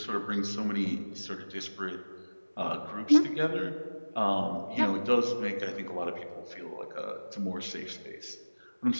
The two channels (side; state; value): both; inverted; correlation -1.00